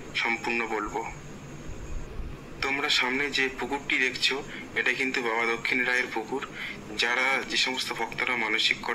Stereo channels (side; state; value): both; identical; correlation 1.00